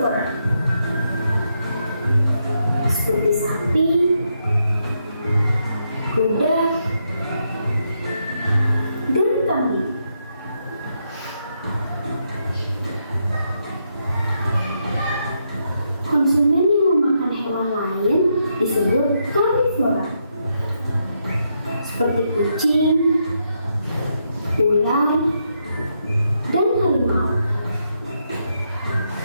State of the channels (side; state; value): both; inverted; correlation -0.80